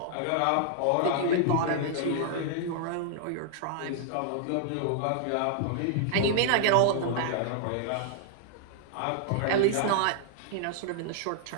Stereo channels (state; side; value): different; both; correlation -0.01